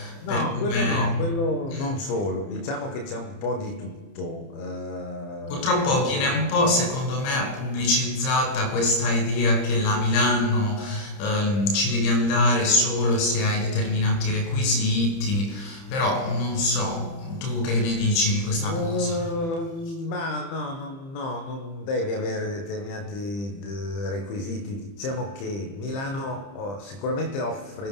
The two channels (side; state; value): right; late; 30 ms